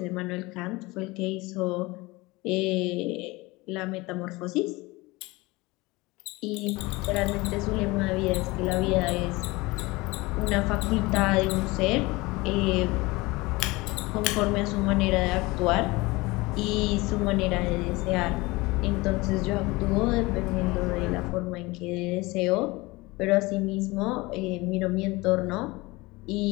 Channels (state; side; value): quieter; right; 22.6 dB